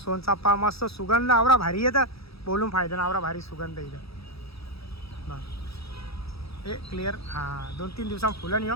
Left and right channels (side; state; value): right; late; 0.77 ms